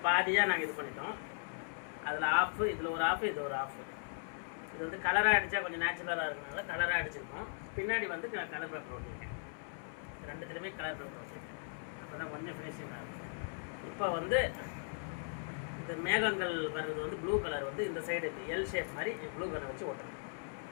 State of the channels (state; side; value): silent; right; 52 dB below the other